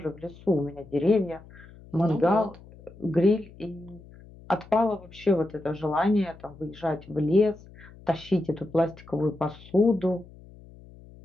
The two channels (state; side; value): noise; left; hum, 21 dB below the sound